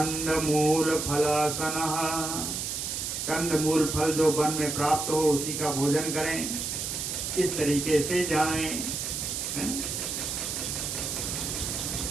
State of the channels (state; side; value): noise; right; hiss, 3 dB below the sound